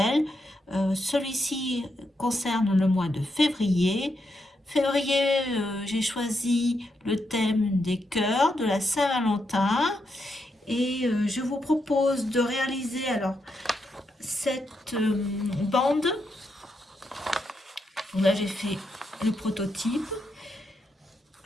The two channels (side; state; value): both; normal; correlation 0.82